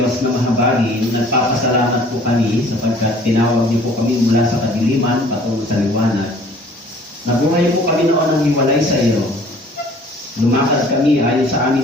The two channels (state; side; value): normal; both; correlation 0.53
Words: na mahabagin, nagpapasalamat po kami sapagkat tinawag niyo po kami mula sa kadiliman patungo sa liwanag. Nabuhay po kami noon ng hiwalay sa iyo. Lumakad kami ayon sa aming